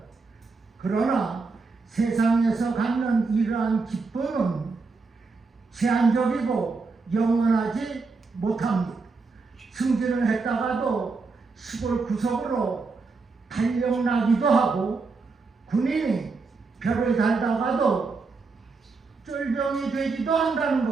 그러나 세상에서 갖는 이러한 기쁨은 제한적이고 영원하지 못합니다. 승진을 했다가도 시골 구석으로 달력나기도 하고, 군인이 별을 달다가도 쫄병이 되기도 한다는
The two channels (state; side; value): quieter; left; 4.3 dB